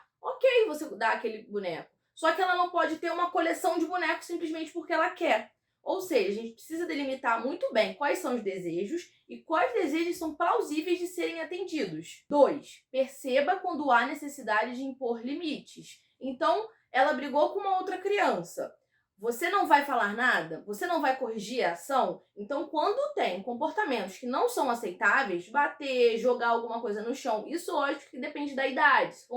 Ok, você dá aquele boneco. Só que ela não pode ter uma coleção de bonecos simplesmente porque ela quer. Ou seja, a gente precisa delimitar muito bem quais são os desejos e quais desejos são plausíveis de serem atendidos. 2. Perceba quando há necessidade de impor limites. Então, ela brigou com uma outra criança. Você não vai falar nada? Você não vai corrigir a ação? Então, quando tem comportamentos que não são aceitáveis, bater, jogar alguma coisa no chão, isso lógico que depende da idade. Se for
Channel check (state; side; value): identical; both; correlation 1.00